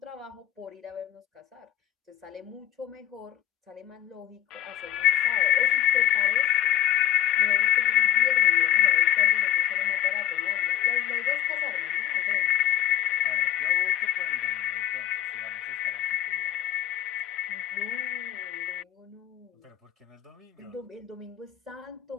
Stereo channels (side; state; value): right; quieter; 11.4 dB